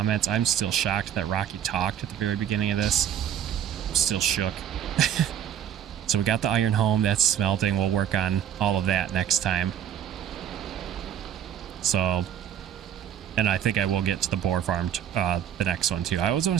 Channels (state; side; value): quieter; left; 9.8 dB